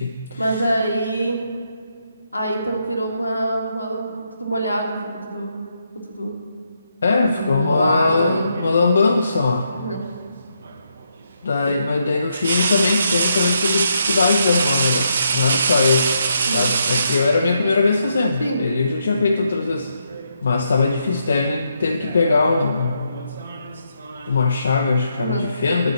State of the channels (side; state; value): both; inverted; correlation -0.78